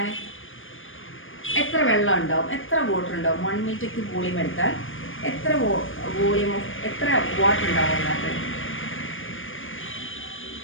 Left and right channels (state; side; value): late; right; 0.58 ms